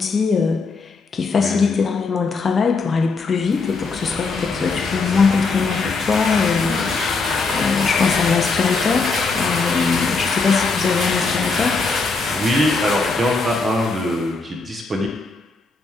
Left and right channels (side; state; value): right; quieter; 4.1 dB